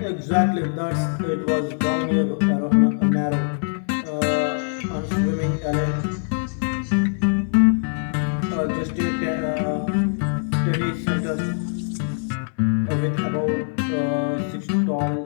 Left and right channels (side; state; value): right; silent; 64 dB below the other